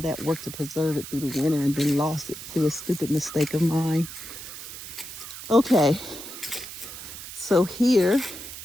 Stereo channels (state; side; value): noise; right; hiss, 11 dB below the sound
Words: that work to preserve it through the winter, and then lost it through a stupid mistake of mine. Okay, so here